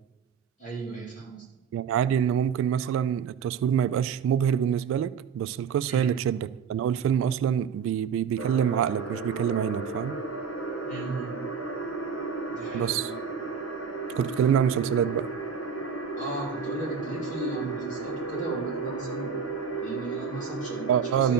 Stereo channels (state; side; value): quieter; left; 7.0 dB